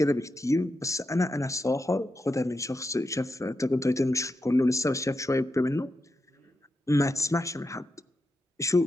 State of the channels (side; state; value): both; normal; correlation 0.87